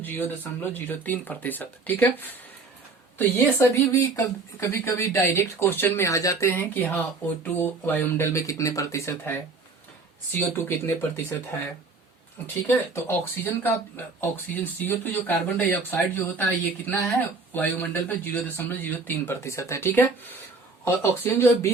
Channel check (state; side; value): quieter; left; 4.0 dB